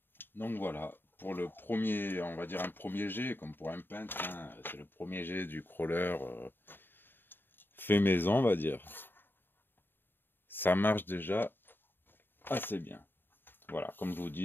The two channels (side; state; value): right; late; 0.097 ms